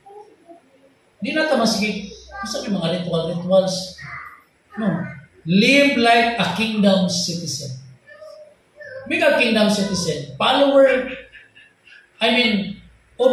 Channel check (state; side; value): identical; both; correlation 1.00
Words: Di na ta masigig. Masabi mga rituals. No. Live like a kingdom citizen. Be a kingdom citizen. Follower.